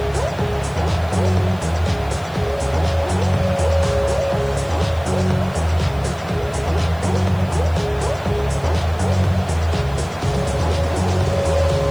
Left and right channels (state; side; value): noise; left; hiss, 26 dB below the sound